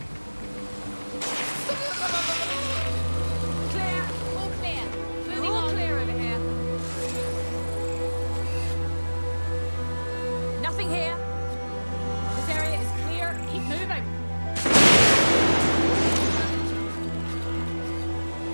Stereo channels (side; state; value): both; inverted; correlation -1.00